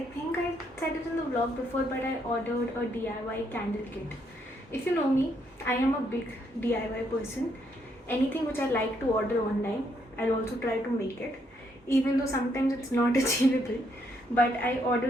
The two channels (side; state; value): both; normal; correlation 0.73